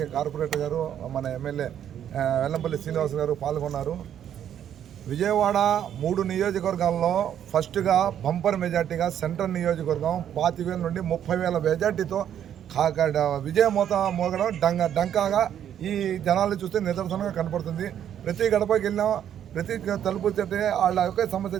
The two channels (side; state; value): left; quieter; 9.9 dB